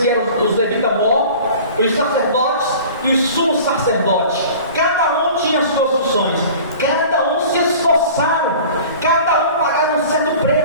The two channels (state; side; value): inverted; both; correlation -0.43